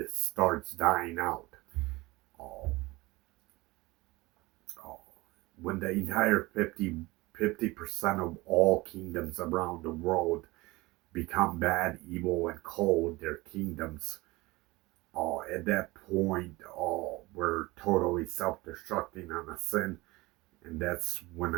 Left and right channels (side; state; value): left; quieter; 21.6 dB